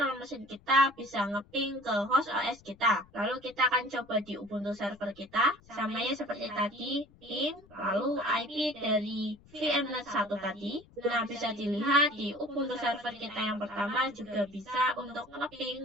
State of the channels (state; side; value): noise; left; rumble, 26 dB below the sound